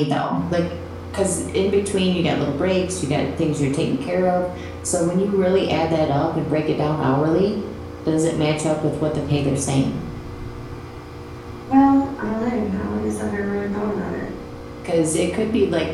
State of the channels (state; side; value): identical; both; correlation 1.00